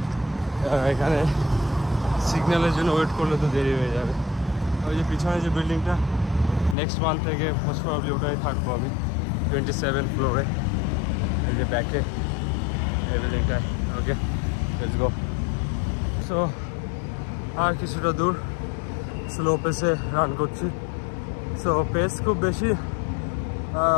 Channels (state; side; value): drops out; right; at 6.8 s